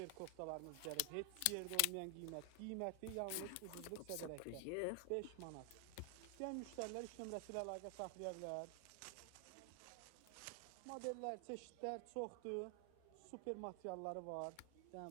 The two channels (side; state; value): both; different; correlation 0.00